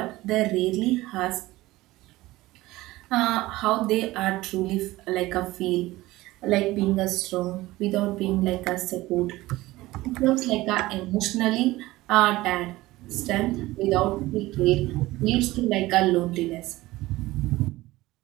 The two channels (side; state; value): left; quieter; 18.3 dB